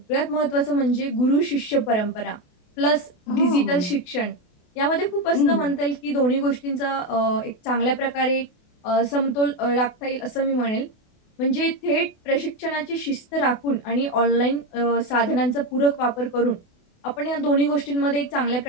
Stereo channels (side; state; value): right; late; 28 ms